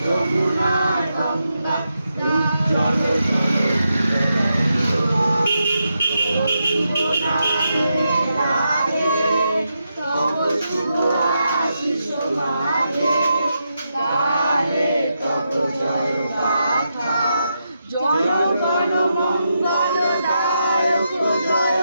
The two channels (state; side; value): inverted; both; correlation -0.85